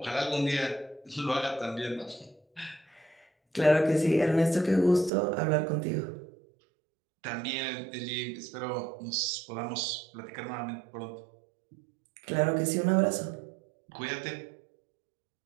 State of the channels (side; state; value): left; drops out; at 5.1 s